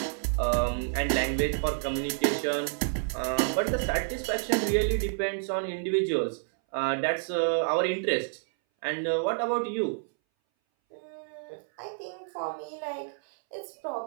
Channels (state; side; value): silent; left; 58 dB below the other